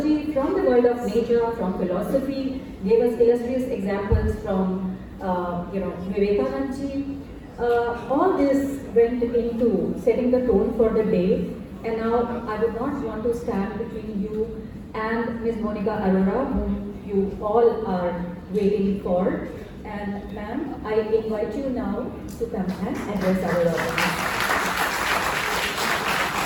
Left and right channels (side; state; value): both; identical; correlation 1.00